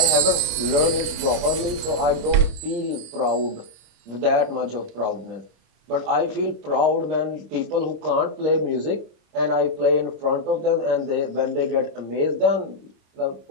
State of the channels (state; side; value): late; left; 26 ms